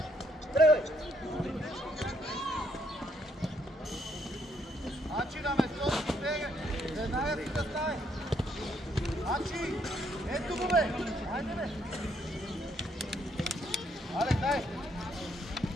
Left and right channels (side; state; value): both; normal; correlation 0.71